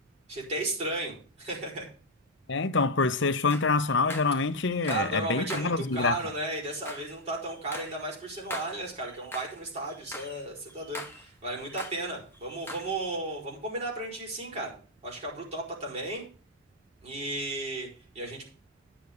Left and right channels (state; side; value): normal; both; correlation -0.01